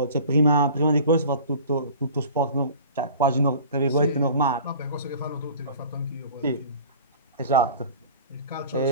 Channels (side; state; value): both; inverted; correlation -0.43